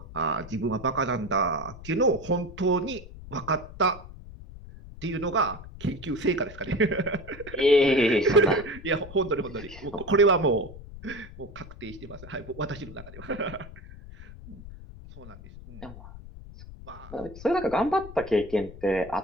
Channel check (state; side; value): noise; left; rumble, 15 dB below the sound